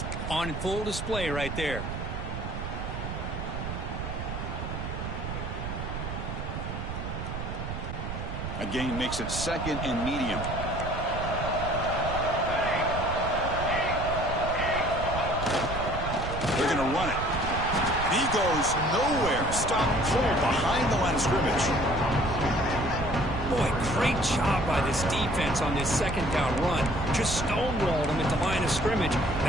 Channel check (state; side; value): noise; right; rumble, 5 dB below the sound